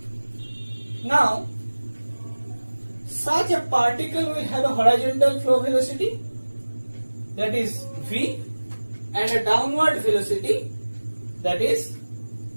Now, such a particle will have a horizontal flow velocity, that is v, and a downward velocity, that is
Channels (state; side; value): inverted; both; correlation -1.00